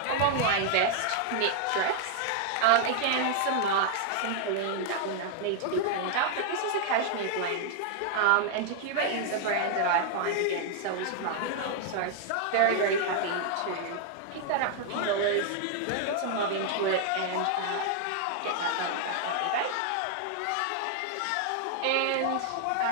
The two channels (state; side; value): different; both; correlation 0.00